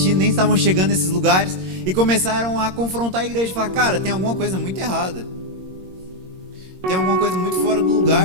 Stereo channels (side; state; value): left; late; 22 ms